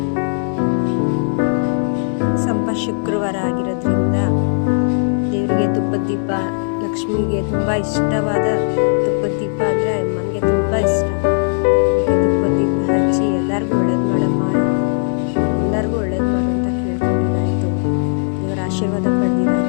ಶುಕ್ರವಾರ ಆಗಿರೋದ್ರಿಂದ ದೇವರಿಗೆ ತುಪ್ಪದ ದೀಪ, ಲಕ್ಷ್ಮಿಗೆ ತುಂಬ ಇಷ್ಟವಾದ ತುಪ್ಪದ ದೀಪ ಅಂದರೆ ನನಗೆ ತುಂಬ ಇಷ್ಟ. ತುಪ್ಪದ ದೀಪ ಹಚ್ಚಿ ಎಲ್ಲರಿಗೂ ಒಳ್ಳೇದು ಮಾಡಮ್ಮ, ಎಲ್ಲರಿಗೂ ಒಳ್ಳೇದು ಮಾಡು ಅಂತ ಕೇಳ್ಕೊಂಡಿದ್ದಾಯಿತು. ದೇವರ ಆಶೀರ್ವಾದ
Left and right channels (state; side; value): silent; right; 68 dB below the other